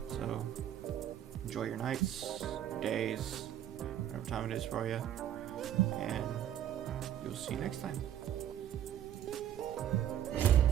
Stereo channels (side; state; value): left; quieter; 10.9 dB